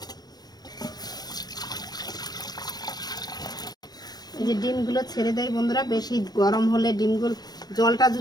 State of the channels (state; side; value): late; right; 0.19 ms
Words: এই যে ডিমগুলো ছেড়ে দেয় বন্ধুরা। বেশি গরম হলে ডিমগুলো, জলটা